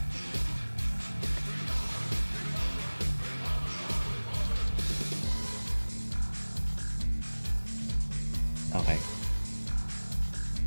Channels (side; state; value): both; inverted; correlation -1.00